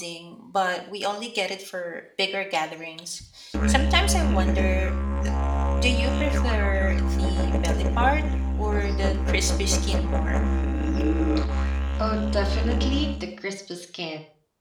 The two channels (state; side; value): identical; both; correlation 1.00